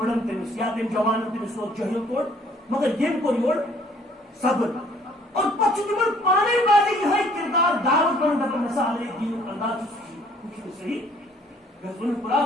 تمس یا تم جوان تمس سو جہل کوڑ مگر یم کو یور صبر اور پچھ تمن پانے بازی یہ کردار دعوت بن دپن مثال ہے دین انداز کچھ صحیح گزن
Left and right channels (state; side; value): normal; both; correlation 0.59